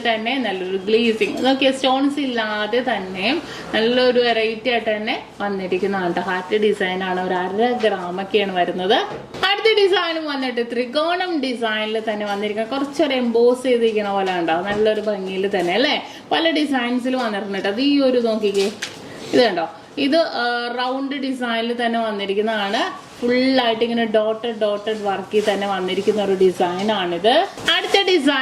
തന്നെ നല്ലൊരു ഗ്ലേസിങ്, നോക്കിയ സ്റ്റോൺസ് ഇല്ലാതെ തന്നെ നല്ലൊരു വെറൈറ്റി ആയിട്ട് തന്നെ വന്നിരിക്കുന്നതാണ്. ഹാർട്ട് ഡിസൈൻ ആണ്, ഒരു 1/2 ഗ്രാമൊക്കെയാണ് വരുന്നത്. അടുത്ത ഡിസൈനും വന്നിട്ട് ത്രികോണം ഡിസൈനിൽ തന്നെ വന്നിരിക്കുന്ന കുറച്ചൊരു എംബോസ് ചെയ്തിരിക്കുന്ന പോലെ ഉണ്ടാവും. നല്ലൊരു ഭംഗിയിൽ തന്നെ അല്ലേ. പല ഡിസൈൻസിൽ വന്നിട്ടുണ്ട്. അത് ഈ ഒരു നോക്കിക്കേ, ഇത് കണ്ടോ, ഇത് റൗണ്ട് ഡിസൈനിൽ തന്നെ വന്നിരിക്കുന്നതാണ്. ഫുള്ളായിട്ട് ഇങ്ങനെ ഡോട്ടഡ് വർക്കിൽ തന്നെ വന്നിരിക്കുന്ന ഒരു ഡിസൈൻ ആണിത്. അടുത്ത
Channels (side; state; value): both; identical; correlation 1.00